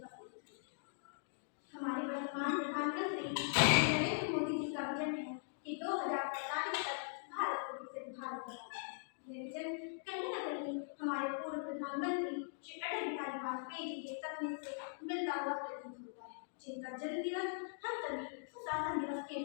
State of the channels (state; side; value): silent; right; digital silence